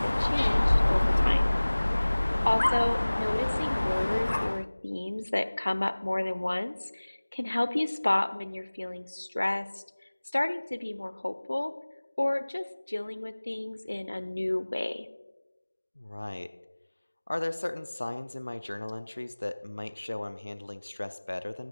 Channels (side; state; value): both; inverted; correlation -1.00